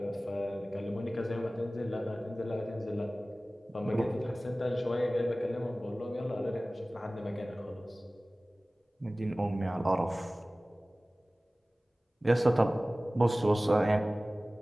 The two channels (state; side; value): normal; both; correlation 0.98